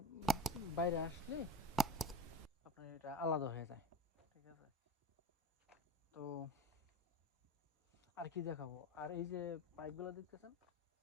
বাইরে আসলে আপনার এটা আলাদা হয়ে যায়, ঠিক আছে। তো আর কি দেখাবো, আর এই যে পাইপগুলো দেখতেছেন,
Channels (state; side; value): normal; both; correlation 0.30